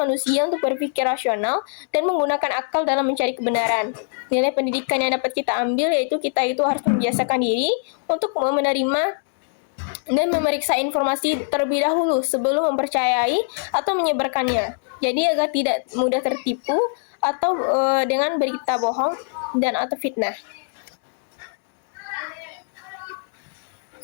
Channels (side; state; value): right; silent; digital silence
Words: untuk berpikir rasional dan menggunakan akal dalam mencari kebenaran. Nilai pendidikan yang dapat kita ambil yaitu kita itu harus membiasakan diri untuk menerima dan memeriksa informasi terlebih dahulu sebelum mempercayai atau menyebarkannya. Jadi agar tidak mudah tertipu atau dengan berita bohong dan atau fitnah.